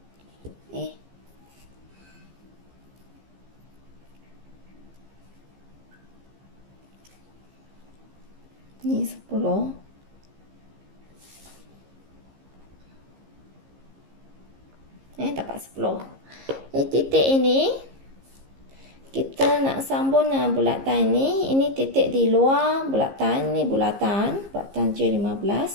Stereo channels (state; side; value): late; left; 15 ms